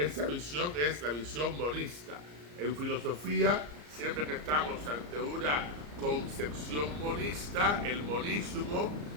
visión es la visión monista. En filosofía, siempre que estamos ante una concepción monista, el monismo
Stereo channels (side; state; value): left; late; 34 ms